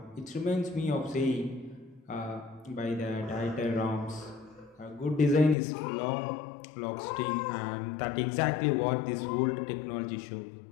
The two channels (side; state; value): right; drops out; at 5.6 s